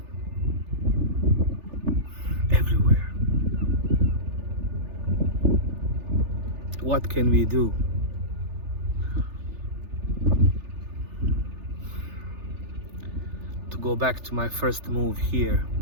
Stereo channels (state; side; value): late; left; 3.4 ms